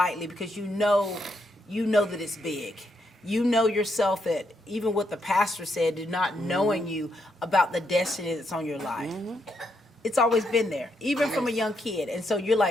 because you know that it's big. You know yourself that even what the pastor said, not knowing you about the destiny that's on your life. It's always been there, even from a young kid. And so you're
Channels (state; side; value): normal; both; correlation 0.78